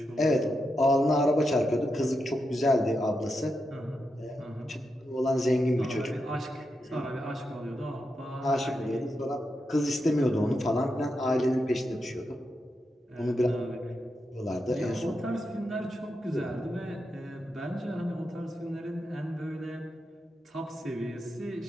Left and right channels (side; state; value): both; normal; correlation 0.86